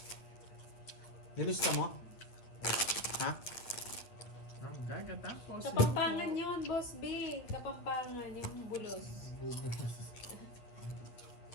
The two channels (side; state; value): right; late; 9.0 ms